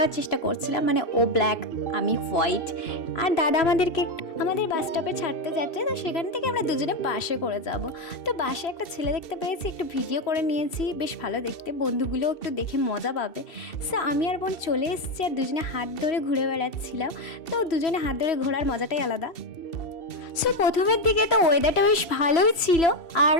চেষ্টা করছিলাম, মানে ও ব্ল্যাক আমি হোয়াইট। আর দাদা আমাদের বাস স্টপে ছাড়তে যাচ্ছে, তো সেখান থেকে আমরা দুজনে বাসে করে যাব। তো বাসে একটা ছেলে দেখতে পেয়েছি, একটু ভিডিও করে নিয়েছি, বেশ ভালো দেখতে, বন্ধুগুলোও একটু দেখে মজা পাবে। সো আমি আর বোন চলে এসেছি, আর দুজনে হাত ধরে ঘুরে বেড়াচ্ছিলাম। তো দুজনে হাত ধরে ঘোরার মজাটাই আলাদা। সো প্রথমের দিকে তো ওয়েদারটা বেশ ভালোই ছিল, আর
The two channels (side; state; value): right; late; 2.7 ms